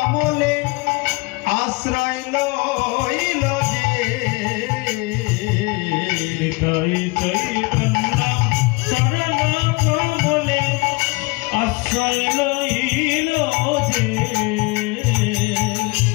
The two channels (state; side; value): quieter; right; 25.9 dB